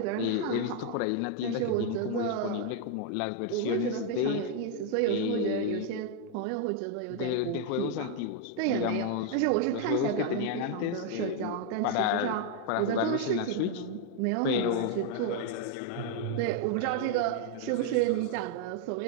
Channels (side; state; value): both; different; correlation 0.01